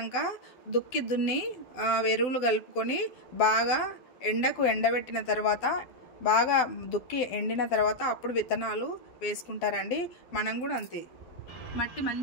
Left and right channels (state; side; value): late; right; 12 ms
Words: దున్ని ఎరువులు కలుపుకొని బాగా ఎండకు ఎండబెట్టిన తర్వాత, బాగా దుక్కి ఎండిన తర్వాత అప్పుడు విత్తనాలు వేసుకుంటారండి. మనం కూడా అంతే, మట్టి